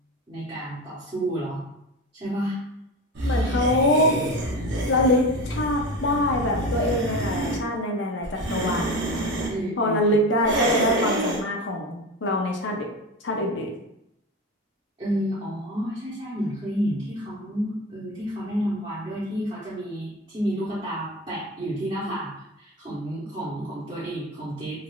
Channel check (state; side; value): normal; both; correlation 0.26